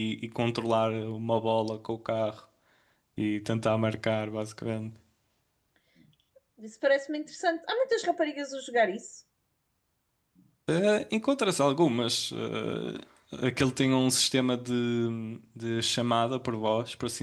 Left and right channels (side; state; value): both; identical; correlation 1.00